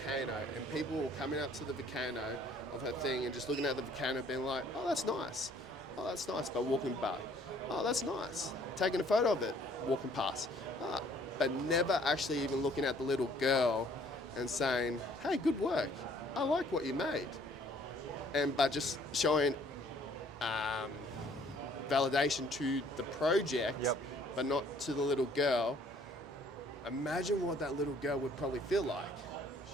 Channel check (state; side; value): normal; both; correlation 0.60